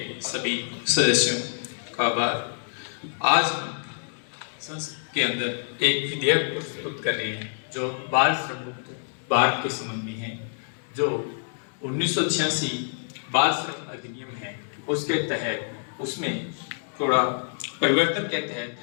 सभी सदस्यों का आभार। आज हम संसद के अंदर एक विधेयक प्रस्तुत कर रहे हैं जो बाल श्रम मुक्त भारत के संबंध में है। जो 1986 बाल श्रम अधिनियम है उसके तहत उसमें थोड़ा परिवर्तन के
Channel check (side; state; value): right; silent; digital silence